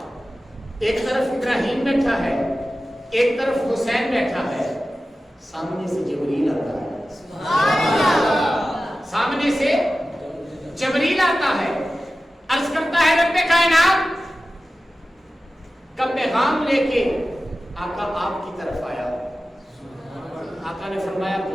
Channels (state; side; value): normal; both; correlation 0.94